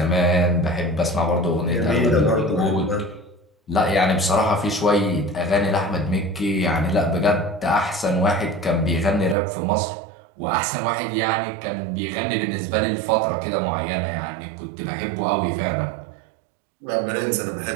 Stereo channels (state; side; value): drops out; left; at 9.3 s